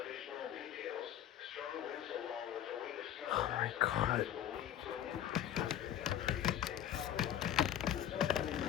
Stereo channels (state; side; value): quieter; right; 10.8 dB